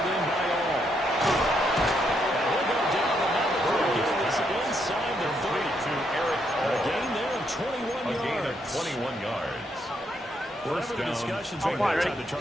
in by all. And he'll go down the number 3. It's inside the 30. To Eric A gain there of 21 yards. A gain of 21 yards. Whatever the discussions are time to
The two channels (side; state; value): both; normal; correlation 0.76